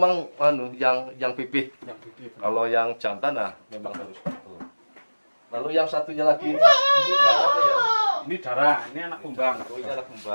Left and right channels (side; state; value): both; inverted; correlation -1.00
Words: yang pipih. Kalau yang jantan memang harus betul. Lalu yang satunya lagi ini darah apa ya? Ini darah, ini anak kumbang. Oh, ini anak